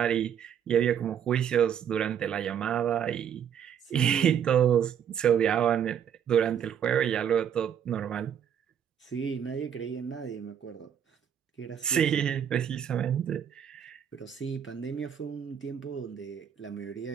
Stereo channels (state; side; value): quieter; left; 8.7 dB